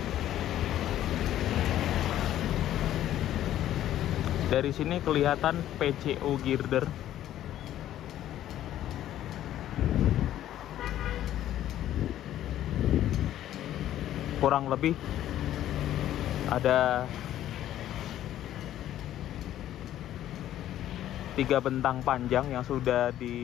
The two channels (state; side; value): quieter; right; 12.4 dB